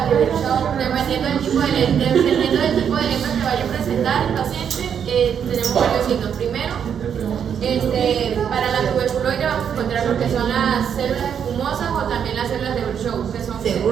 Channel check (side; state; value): left; quieter; 8.0 dB